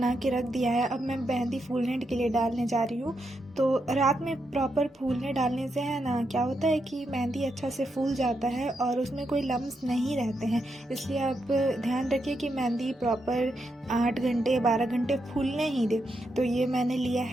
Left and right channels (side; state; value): both; normal; correlation 0.83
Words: के रख दिया है। अब मैं मेहंदी फूलने के लिए डालने जा रही हूँ। तो रात में प्रॉपर फूलने डालने से है ना, क्या होता है कि मेहंदी अच्छा से फूल जाता है और उसमें कोई लम्स नहीं रहते हैं। इसलिए आप ध्यान रखिए कि मेहंदी प्रॉपर 8 घंटे 12 घंटे फूलने ही दे। तो ये मैंने लिया